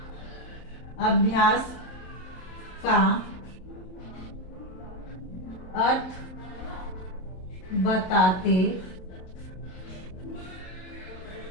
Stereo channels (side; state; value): right; late; 27 ms